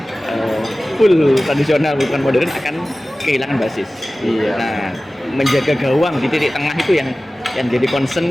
Full tradisional bukan modern akan kehilangan basis. Iya. Nah, menjaga gawang di titik tengah itu yang jadi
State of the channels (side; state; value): both; normal; correlation 0.97